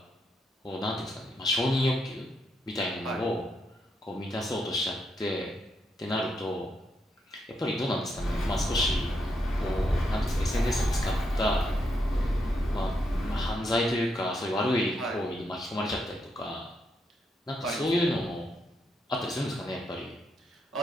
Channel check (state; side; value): normal; both; correlation 0.80